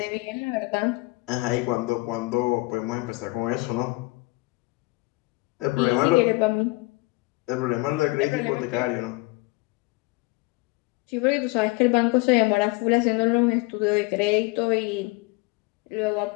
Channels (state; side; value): quieter; right; 23.9 dB